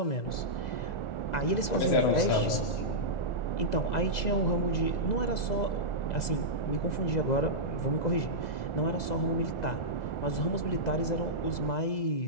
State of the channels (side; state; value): right; late; 2.0 ms